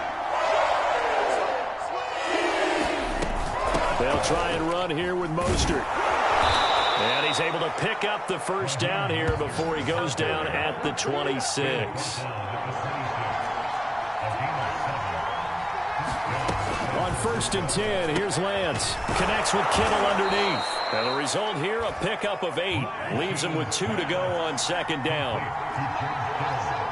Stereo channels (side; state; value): both; identical; correlation 1.00